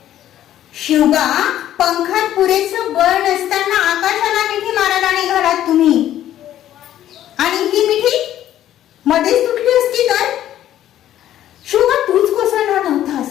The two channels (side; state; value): right; quieter; 12.1 dB